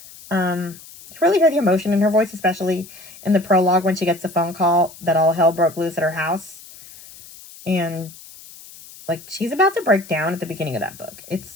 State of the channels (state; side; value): noise; left; hiss, 19 dB below the sound